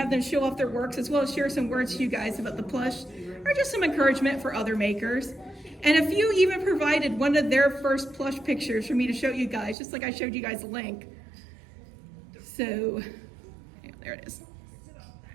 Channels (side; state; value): left; drops out; at 9.8 s